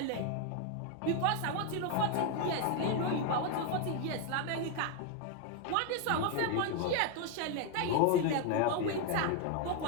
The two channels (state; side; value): different; both; correlation 0.01